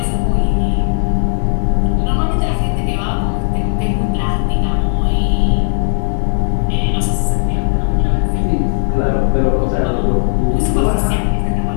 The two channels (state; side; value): silent; right; 67 dB below the other